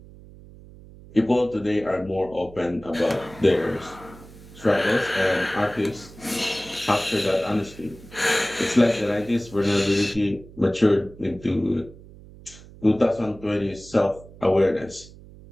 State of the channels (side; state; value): right; noise; hum, 20 dB below the sound